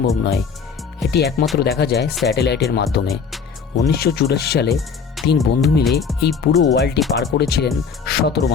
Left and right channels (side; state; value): right; quieter; 5.9 dB